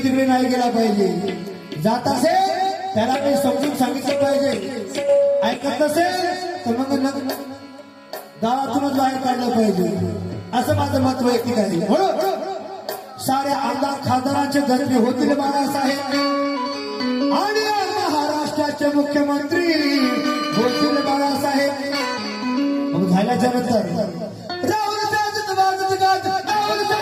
तिकडे नाही गेला पाहिजे. जात असेल त्याला मी समजून सांगितलं पाहिजे. ऐकत नसेल तर मग गावातूनच बाहेर काढलं पाहिजे. असं माझं मत वैयक्तिक आहे. म्हणून साऱ्या आमदार खासदारांचे गजबे होतील बाळासाहेब आणि महाराष्ट्राचे मुख्यमंत्री होतील बाळासाहेब. मग झाल्याच्या नंतर राहुल साजत वाजत गाजत राहुल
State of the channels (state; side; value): identical; both; correlation 1.00